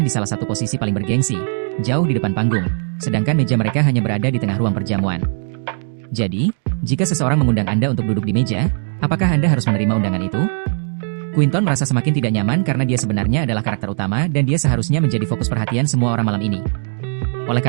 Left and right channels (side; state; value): left; silent; 65 dB below the other